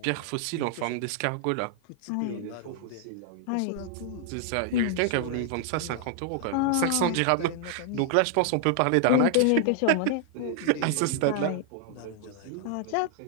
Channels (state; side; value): different; both; correlation 0.00